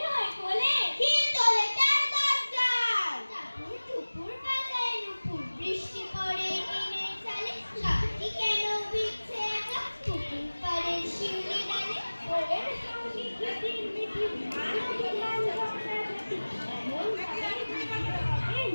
নয় কোলে, খিল তোলে তার দরজায়। টাপুর টুপুর বাজায় নুপুর, বৃষ্টি পড়ে টিনের চালে, গাছটি কেন ভিজছে একা পুকুর পাড়ের শিউলি ডালে। ওদের সঙ্গে কিটির মিটির মানবী গান ঝগড়াঝাটি, এমন ভাবে বৃষ্টি হবে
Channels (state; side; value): inverted; both; correlation -1.00